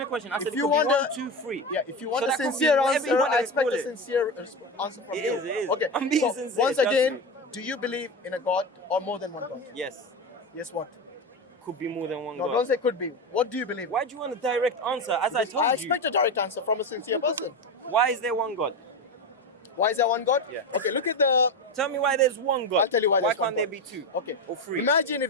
a question. I said If it you could be want 1, a- 2, 3. Yeah, if you want So a that could be sincere whatever answer, you want I to expect call a it. sincere answer from It you. is, it is. Okay, I'm being so sincere, once trust again, me. do you believe in a God or more than one God? Yes. Yes, what? Could be more than one No, God. don't say could be. What do you believe? Why do you want a direct answer? As I told I you. expect a direct answer from a sincere person. Why is there one God? Why is there one God? Yeah. Okay, look at the. Tell me why there's one God. I'll tell you why there's Why one can't there God. be two? Okay. Or three? Imagine if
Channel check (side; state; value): both; normal; correlation 0.19